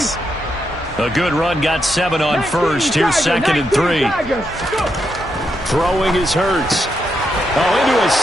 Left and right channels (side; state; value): both; normal; correlation 0.82